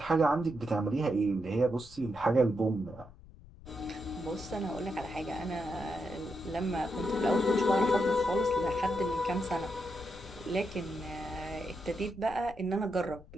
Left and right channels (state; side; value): noise; left; rumble, 19 dB below the sound